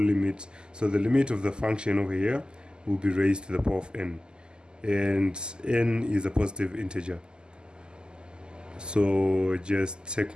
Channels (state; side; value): late; left; 0.047 ms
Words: So the limit of the function over here will be raised to the power of n, and n is a positive integer. So just take